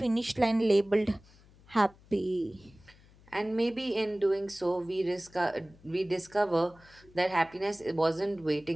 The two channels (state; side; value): noise; left; hum, 26 dB below the sound